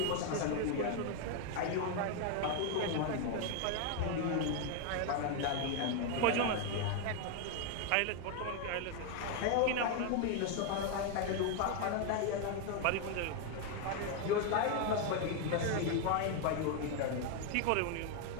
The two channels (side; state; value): both; different; correlation 0.01